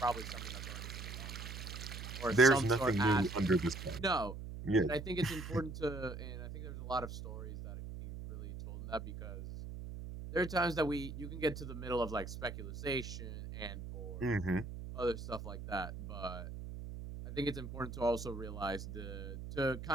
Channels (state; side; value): noise; right; hum, 9 dB below the sound